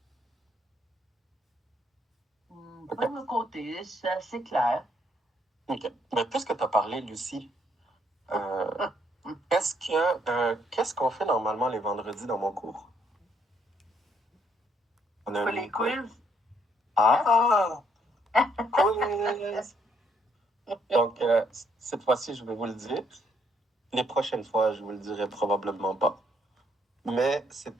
Pas de mon côté, c'est assez clair. OK. Mais puisque tu as parlé, Lucie, qu'est-ce qu'on fait normalement les vendredis dans mon cours? On a Pas un les quiz. Ah! Quiz! Donc, cette fois-ci, je vais vous le dire. Les prochaines fois, je vous le dirai probablement pas. Mais c'est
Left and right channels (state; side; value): normal; both; correlation 0.70